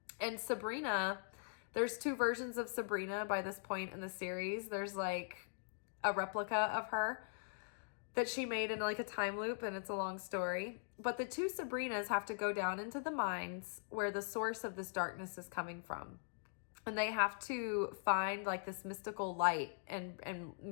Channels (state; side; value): silent; right; digital silence